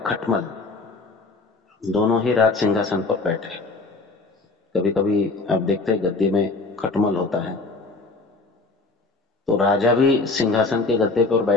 खटमल दोनों ही राज सिंहासन पर बैठे। कभी कभी आप देखते हैं गद्दे में खटमल होता है, तो राजा भी सिंहासन के गद्दे पर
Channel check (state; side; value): quieter; right; 3.6 dB